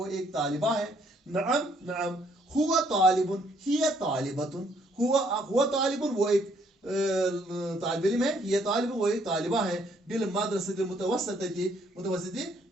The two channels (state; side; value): normal; both; correlation 0.67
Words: एक तालिबा है। नअम नअम, हुवा तालिबुन हिय तालिबतुन, हुवा तालिबुन वो एक तालिब इल्म है, हिय तालिबुन वो एक तालिबा है। बिल मदरसतिल मुतवस्सितती, मुतवस्सिती